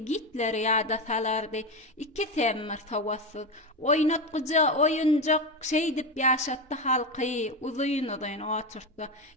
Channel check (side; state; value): both; normal; correlation 0.15